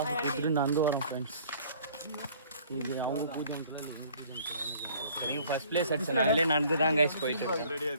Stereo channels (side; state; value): both; inverted; correlation -0.54